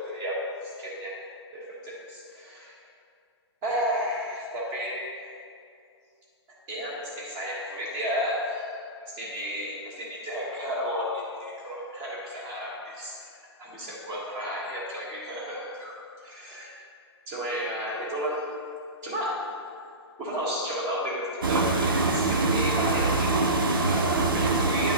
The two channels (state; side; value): normal; both; correlation -0.19